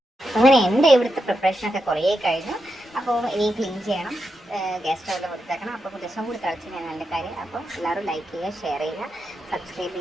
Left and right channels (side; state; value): both; normal; correlation 0.86